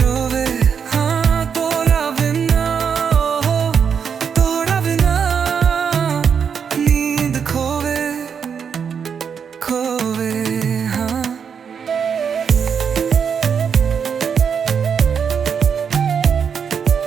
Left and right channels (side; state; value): left; quieter; 6.9 dB